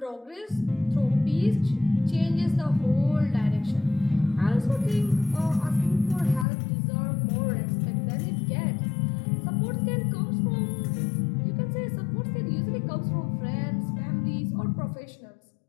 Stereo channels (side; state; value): right; drops out; at 6.5 s